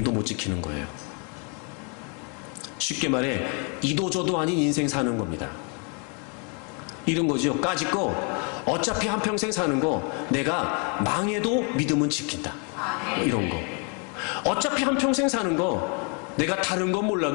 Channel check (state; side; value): quieter; right; 37.2 dB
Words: 못 지키는 거예요. 쉽게 말해 이도저도 아닌 인생 사는 겁니다. 이런 거죠. 까짓거 어차피 한평생 사는 거 내가 망해도 믿음은 지킨다. 이런 거. 어차피 한평생 사는 거 내가 다른 건